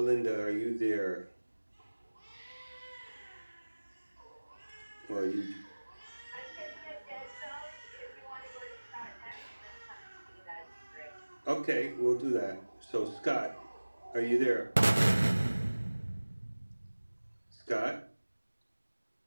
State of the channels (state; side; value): inverted; both; correlation -1.00